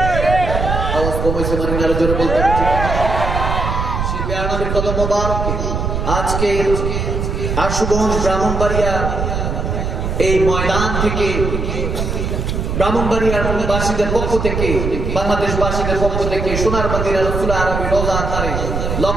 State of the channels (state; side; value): noise; right; rumble, 2 dB below the sound